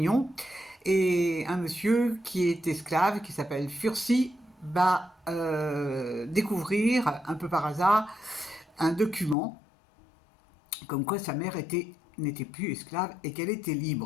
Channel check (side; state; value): right; drops out; at 9.3 s